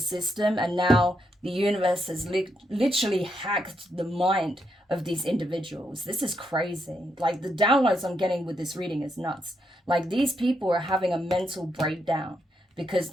and now the universe has literally hacked the mind of these individuals. This is crazy. Like, the downloads I'm getting with this reading is nuts. Like, these people are having a mental breakdown because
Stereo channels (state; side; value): normal; both; correlation 0.80